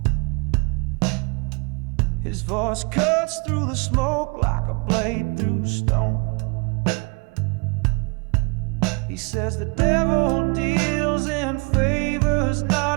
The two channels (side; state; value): left; quieter; 32.5 dB